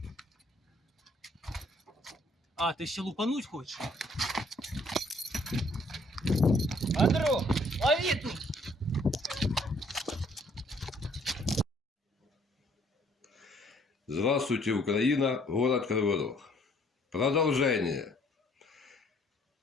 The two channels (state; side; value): normal; both; correlation 0.62